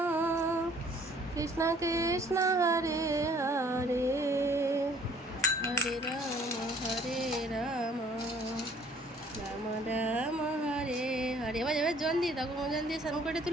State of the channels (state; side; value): normal; both; correlation 0.57